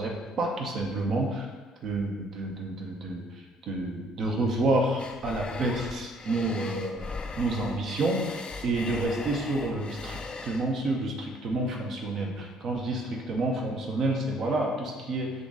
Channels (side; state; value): both; normal; correlation 0.62